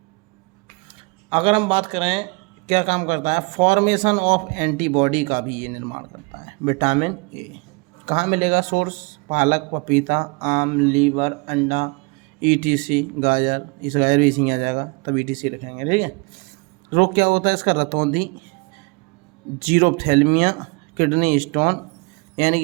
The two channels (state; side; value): quieter; left; 29.5 dB